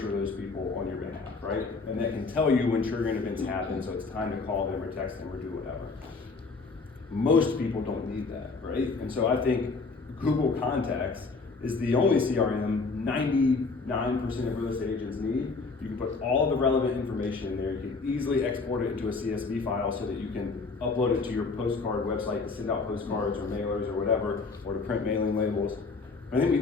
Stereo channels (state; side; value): quieter; right; 4.2 dB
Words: those people on your behalf, right? And that can tell you when triggering events happen, so it's time to call them or text them or do whatever. Most people don't need that, right? And so I think Google Contacts is the only CRM 99% of real estate agents need. You can put all of the relevant information in there. You can easily export it into a CSV file so that you can upload it to your postcard website to send out postcards or mailers or whatever, or to print mailing labels. I think we